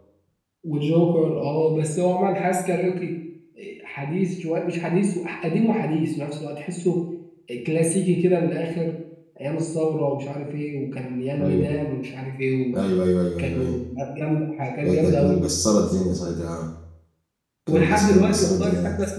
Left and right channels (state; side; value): identical; both; correlation 1.00